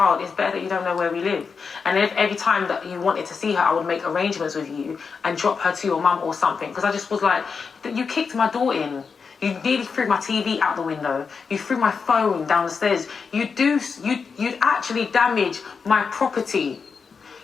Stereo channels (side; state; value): right; quieter; 5.5 dB